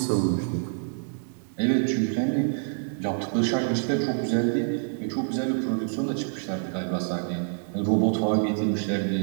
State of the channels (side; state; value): left; silent; digital silence